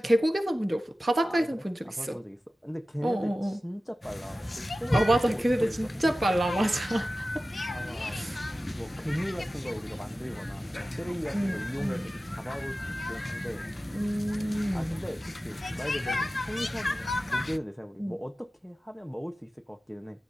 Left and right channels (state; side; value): normal; both; correlation 0.95